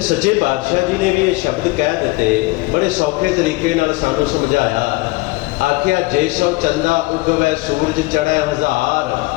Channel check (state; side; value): quieter; right; 22.3 dB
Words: ਸੱਚੇ ਪਾਤਸ਼ਾਹ ਜੀ ਨੇ ਵੀ ਇਹ ਸ਼ਬਦ ਕਹਿ ਦਿੱਤੇ, ਬੜੇ ਸੌਖੇ ਤਰੀਕੇ ਨਾਲ ਸਾਨੂੰ ਸਮਝਾਇਆ। ਆਖਿਆ ਜੇ ਸੋ ਚੰਦਾ ਉਗਵੈ ਸੂਰਜ ਚੜ੍ਹੈ ਹਜ਼ਾਰ,